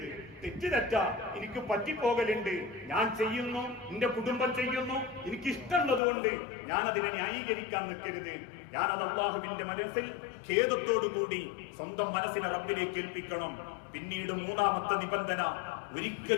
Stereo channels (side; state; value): right; drops out; at 6.0 s